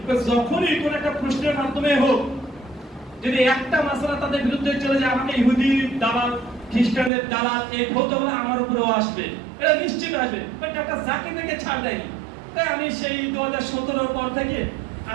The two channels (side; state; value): left; drops out; at 7.1 s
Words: যখনই কোন একটা প্রশ্নের মাধ্যমে হোক, যদি একটা মাসলা তাদের বিরুদ্ধে চলে যায়, আমাকে ইহুদি দালাল, খ্রিস্টানদের দালাল এই ফতোয়া আমার উপরেও আসবে, এটা নিশ্চিত আসবে। বাট একটা জাকির নায়েককে ছাড় দেয়নি। তাই আমি সেই 2017 পর থেকে